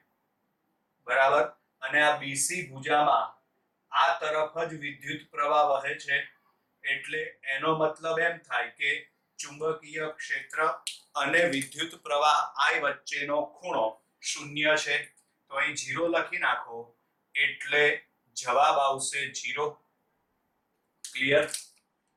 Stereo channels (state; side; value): identical; both; correlation 1.00